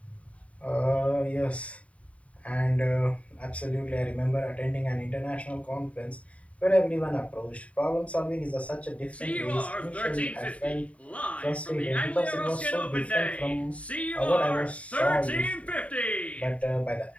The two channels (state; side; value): late; right; 0.066 ms